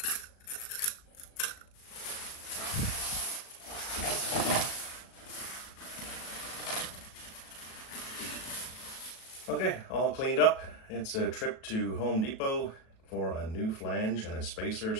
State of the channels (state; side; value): late; right; 37 ms